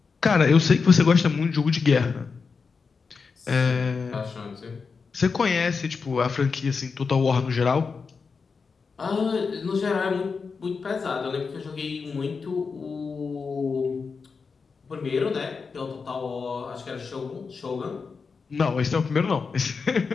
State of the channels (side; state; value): right; quieter; 5.1 dB